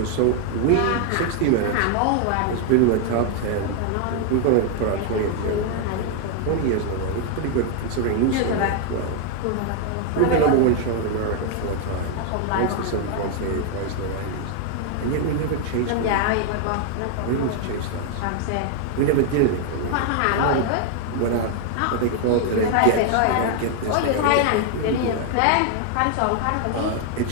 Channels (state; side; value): different; both; correlation 0.00